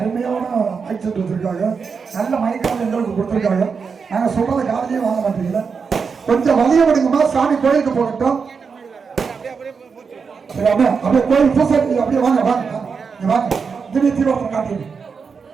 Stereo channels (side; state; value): left; quieter; 5.6 dB